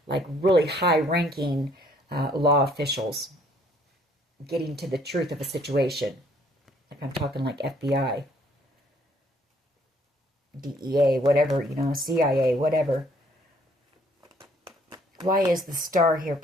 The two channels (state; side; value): normal; both; correlation 0.63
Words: like really high-ranking law officials getting to the truth of a situation. Like I'm talking like FBI, DEA, whatever, you know, CIA, whatever. Why is the Star here,